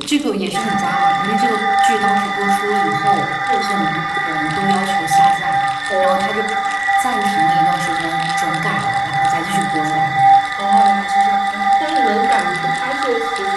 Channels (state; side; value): noise; left; rumble, 29 dB below the sound